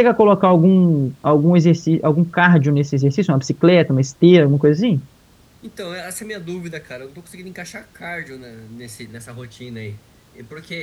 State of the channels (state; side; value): identical; both; correlation 1.00